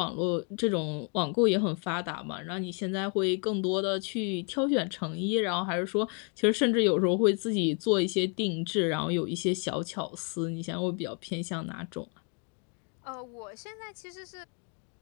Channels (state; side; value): quieter; right; 39.2 dB